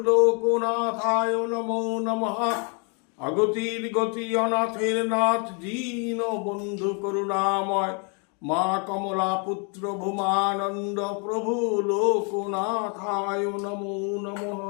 লোকনাথায় নমো নমঃ। অগতির গতি অনাথের নাথ দীন বন্ধু করুণাময় মা কমলা পুত্র ভূমানন্দ প্রভু লোকনাথায় নমো নমঃ।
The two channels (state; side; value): quieter; right; 36.9 dB